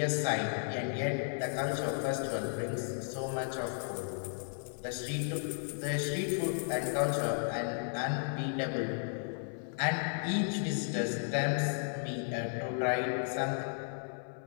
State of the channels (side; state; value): right; silent; 55 dB below the other